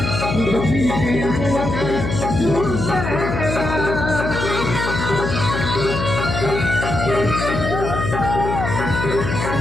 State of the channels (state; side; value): noise; left; hum, 3 dB below the sound